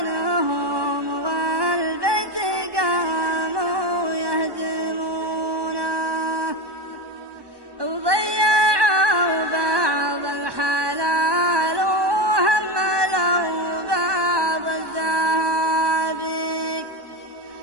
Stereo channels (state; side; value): late; left; 1.2 ms